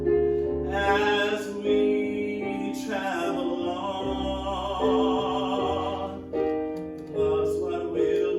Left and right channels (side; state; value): both; identical; correlation 1.00